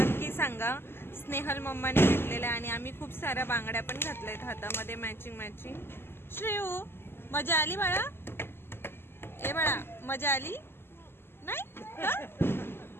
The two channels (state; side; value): late; right; 0.11 ms